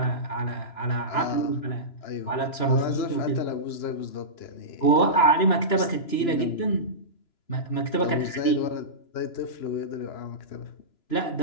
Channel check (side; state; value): right; late; 2.9 ms